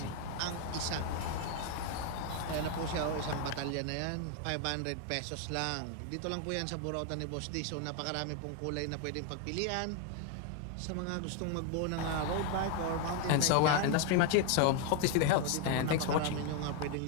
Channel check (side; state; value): both; different; correlation 0.01